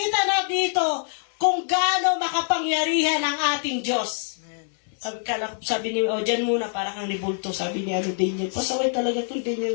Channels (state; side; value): silent; right; 62 dB below the other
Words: na dito kung gaano makapangyarihan ang ating Diyos. Sabi ni, dyan muna, para kang nibulto, sabi ni Daniel. Pasaway talaga itong